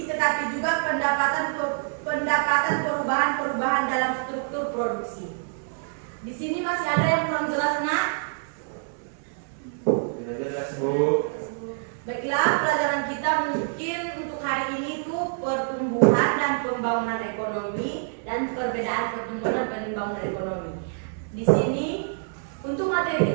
tetapi juga pendapatan perubahan dalam struktur produksi. Di sini masih ada yang kurang jelas, Nak? Sudah jelas, Bu. Baiklah, pelajaran kita mungkin untuk hari ini itu pertumbuhan dan pembangunan ekonomi dan perbedaan pertumbuhan dan pembangunan ekonomi. Di sini untuk materi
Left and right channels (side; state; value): left; silent; 61 dB below the other